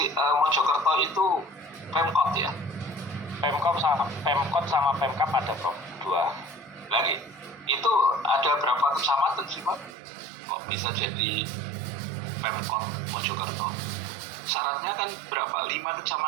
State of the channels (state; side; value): drops out; left; at 10.0 s